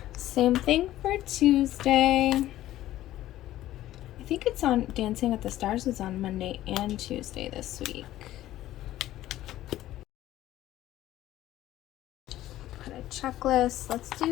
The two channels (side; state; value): right; quieter; 14.3 dB